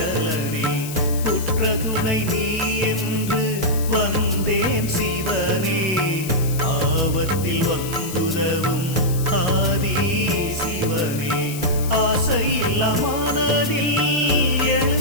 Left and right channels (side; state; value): left; noise; hiss, 11 dB below the sound